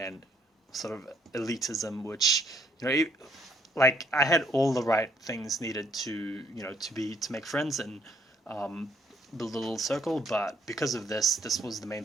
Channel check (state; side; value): normal; both; correlation 0.67